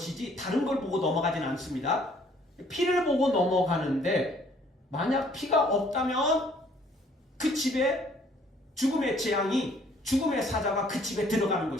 다른 걸 보고 넘어가지는 않습니다. 피를 보고 넘어가는데 만약 피가 없다면 그 집에 죽음의 재앙이, 죽음의 사자가 그 집에 들어가는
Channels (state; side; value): normal; both; correlation 0.60